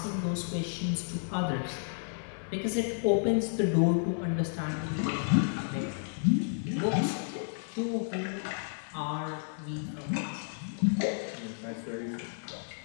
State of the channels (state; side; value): silent; right; 57 dB below the other